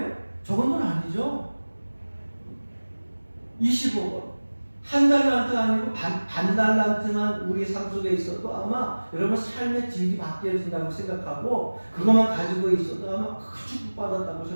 적은 돈 아니죠? 25억 원. 한 달란트 아니고 반 달란트만 우리 삶 속에 있어도 아마 여러분 삶의 질이 바뀌어진다고 생각하고, 그것만 가지고 있어도 아마 축복받았다고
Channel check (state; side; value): inverted; both; correlation -1.00